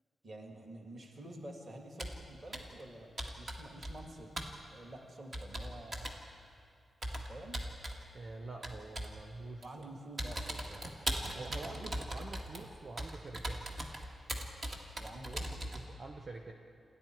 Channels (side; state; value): both; normal; correlation 0.90